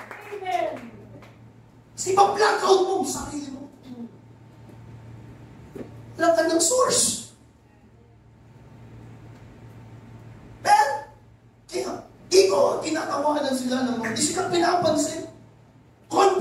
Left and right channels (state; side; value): identical; both; correlation 1.00